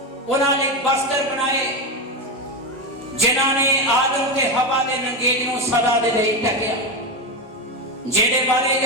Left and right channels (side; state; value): both; normal; correlation 0.13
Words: ਉਹਨਾਂ ਨੇ ਬਸਤਰ ਬਣਾਏ, ਜਿਨ੍ਹਾਂ ਨੇ ਆਦਮ ਤੇ ਹਵਾ ਦੇ ਨੰਗੇਜ ਨੂੰ ਸਦਾ ਦੇ ਲਈ ਢੱਕਿਆ। ਜਿਹਦੇ ਬਾਰੇ